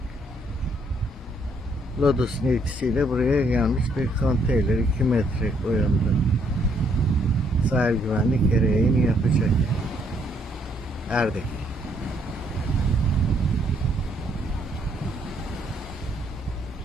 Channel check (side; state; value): both; normal; correlation 0.70